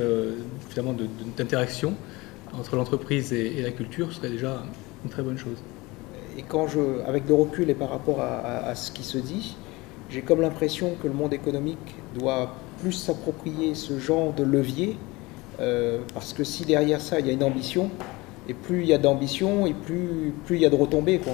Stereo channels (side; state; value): right; quieter; 22.5 dB